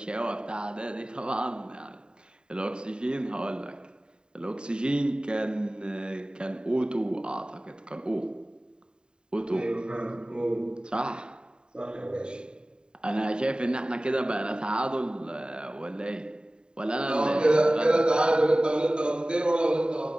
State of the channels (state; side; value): late; left; 0.048 ms